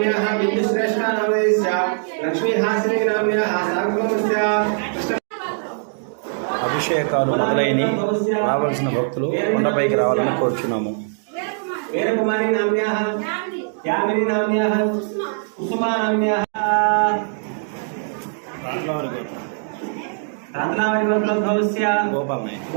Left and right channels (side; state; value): left; silent; digital silence